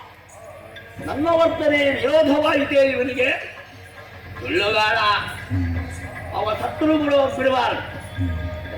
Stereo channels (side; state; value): both; identical; correlation 1.00